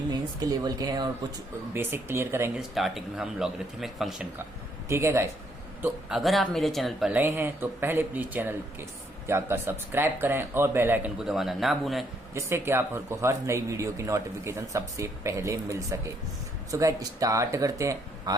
मेंस के लेवल के हैं, और कुछ बेसिक क्लियर करेंगे स्टार्टिंग में हम लॉगरिथमिक फंक्शन का। ठीक है गाइस, तो अगर आप मेरे चैनल पर नए हैं तो पहले प्लीज चैनल के जाकर सब्सक्राइब करें और बेल आइकन को दबाना ना भूलें, जिससे कि आपको हर नई वीडियो की नोटिफिकेशन सबसे पहले मिल सके। सो गाइस, स्टार्ट करते हैं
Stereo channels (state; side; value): normal; both; correlation 0.71